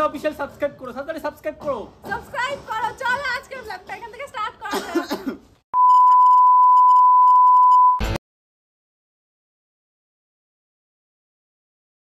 অফিশিয়াল সাবস্ক্রাইব করো, সাবস্ক্রাইব করো। চলো আজকে ব্লগটা এখান থেকে স্টার্ট করা যাক।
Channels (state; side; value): identical; both; correlation 1.00